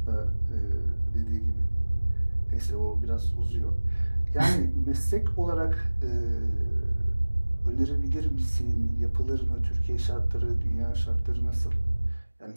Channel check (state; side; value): inverted; both; correlation -1.00